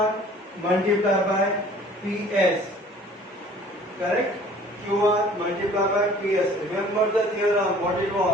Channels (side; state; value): both; normal; correlation 0.51